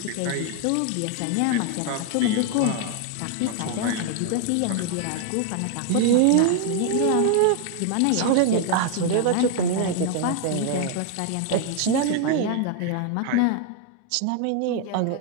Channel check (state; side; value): different; both; correlation 0.00